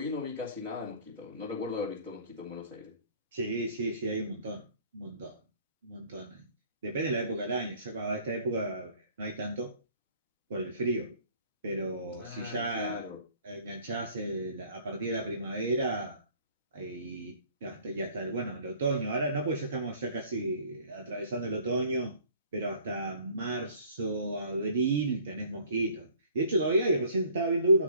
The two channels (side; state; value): both; inverted; correlation -0.55